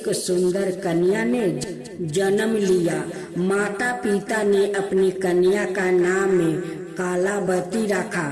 सुंदर कन्या ने जन्म लिया। माता पिता ने अपनी कन्या का नाम कालावती रखा।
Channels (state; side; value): identical; both; correlation 1.00